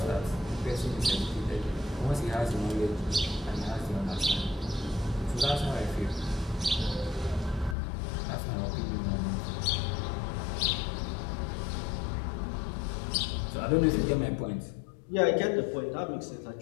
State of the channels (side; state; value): right; drops out; at 7.8 s